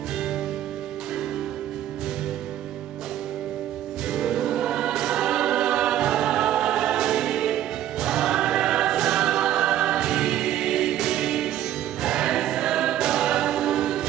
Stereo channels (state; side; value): quieter; left; 12.0 dB